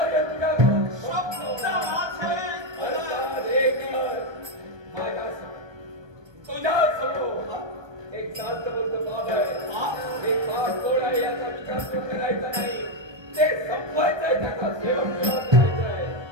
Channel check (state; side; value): late; left; 1.2 ms